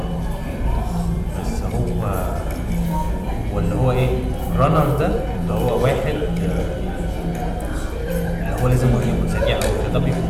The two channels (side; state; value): both; identical; correlation 1.00